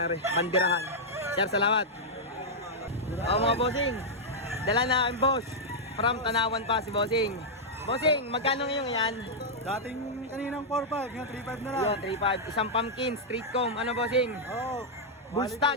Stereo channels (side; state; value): both; normal; correlation -0.06